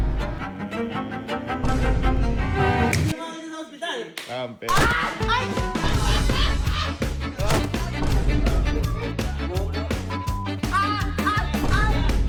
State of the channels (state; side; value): identical; both; correlation 1.00